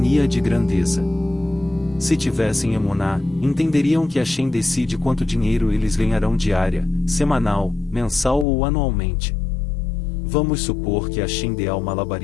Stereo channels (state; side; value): drops out; right; at 8.5 s